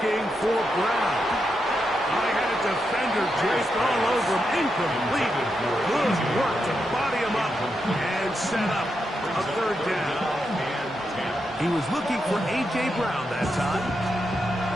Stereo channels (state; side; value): normal; both; correlation 0.85